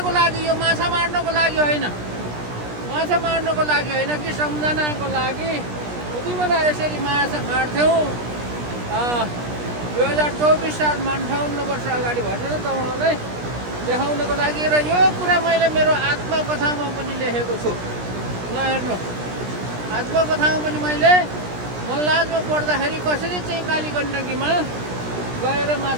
लागि, यो माछा मार्नको लागि होइन, माछा मार्नको लागि होइन कि सम्झनाको लागि उति बेला यसरी माछा मार्थ्यौँ। 2024 सालमा 58 वर्ष अगाडि भनेर तपाईँहरूलाई देखाउनको लागि। र यो कुरा मैले मेरो आत्मकथामा पनि लेखेको छु। ल हेर्नु, आत्मकथामा पनि मैले मल्लाजमा पढ्दाखेरि कसरी चाहिँ कालीगण्डकीमा गएर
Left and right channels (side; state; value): left; late; 17 ms